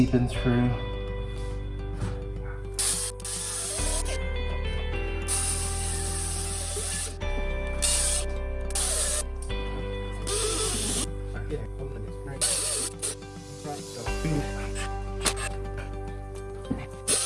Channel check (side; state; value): both; identical; correlation 1.00